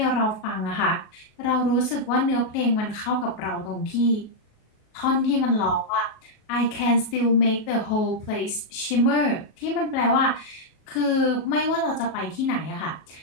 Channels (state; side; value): late; right; 38 ms